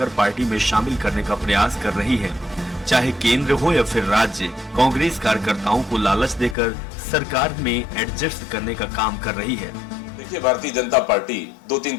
पार्टी में शामिल करने का प्रयास कर रही है। चाहे केंद्र हो या फिर राज्य, कांग्रेस कार्यकर्ताओं को लालच देकर सरकार में एडजस्ट करने का काम कर रही है। देखिए, भारतीय जनता पार्टी 2-3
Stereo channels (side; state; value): right; drops out; at 6.6 s